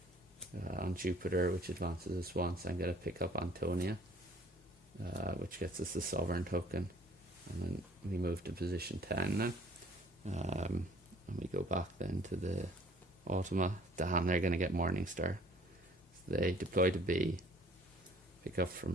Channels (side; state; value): both; normal; correlation 0.55